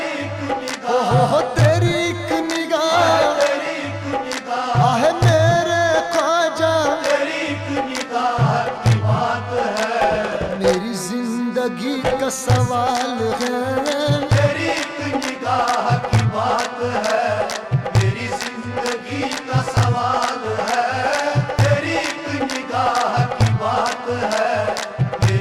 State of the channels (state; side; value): identical; both; correlation 1.00